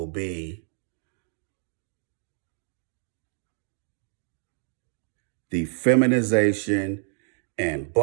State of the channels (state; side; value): silent; left; 59 dB below the other